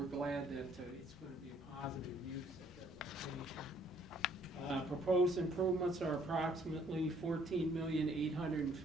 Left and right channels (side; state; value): both; normal; correlation 0.63